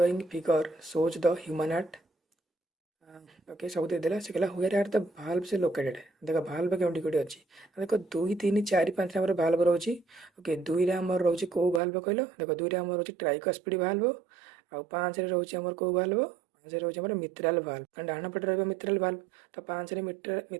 figure shows the human heart okay सब देदेला से कहला हुएर आर द भाल्व से लोकेटेड देख भाल्व केउटी कोटी अच्छी देख 2 3 4 5 आम भाल्व रोचे ओके 2 रे आम रोचे कौ भाल्व कहल देख 2 रे आम रोचे ट्राइकस्पिड भाल्व आउ 5 रे रोचे आमर कौ भाल्व ପାଞ୍ଚ ରହୁଛି ଆମର ମିତ୍ରାଲ ଭାଲ୍ଭ, କାରଣ ଡାହାଣ ପଟେ ରହିବ ମିତ୍ରାଲ ଭାଲ୍ଭ, ତ ପାଞ୍ଚରେ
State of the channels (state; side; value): drops out; left; at 11.8 s